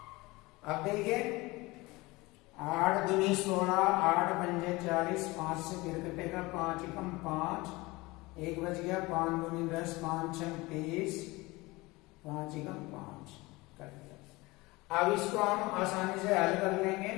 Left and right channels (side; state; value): right; quieter; 22.2 dB